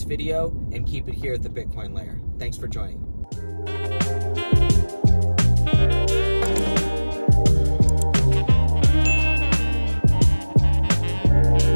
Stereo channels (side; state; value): both; inverted; correlation -1.00